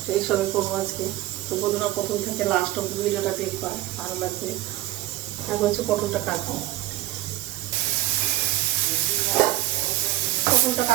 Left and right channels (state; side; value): quieter; left; 16.0 dB